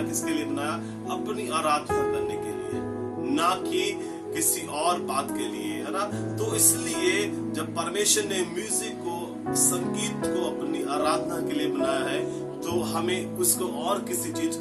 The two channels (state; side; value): identical; both; correlation 1.00